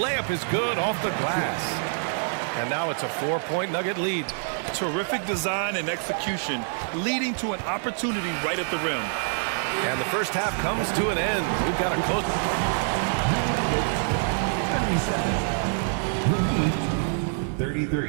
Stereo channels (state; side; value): silent; left; 61 dB below the other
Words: is good off the glass. And now it's a 4-point Nugget lead. Terrific design and execution, leading to an opportunity right at the rim. And the first half comes to an end. We've got a close...